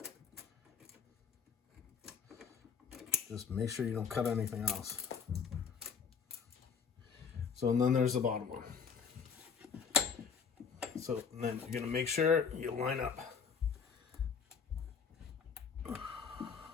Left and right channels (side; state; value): right; quieter; 6.2 dB